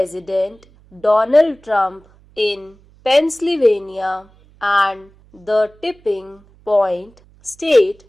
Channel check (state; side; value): noise; right; hum, 29 dB below the sound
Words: Donald Trump in Pennsylvania and the tipping point state